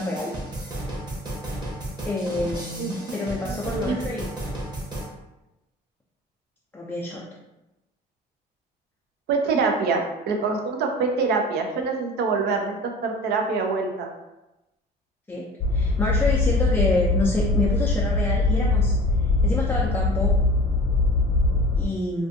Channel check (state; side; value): normal; both; correlation 0.40